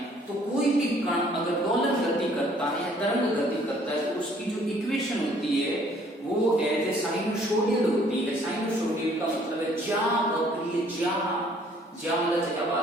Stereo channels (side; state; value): both; normal; correlation 0.60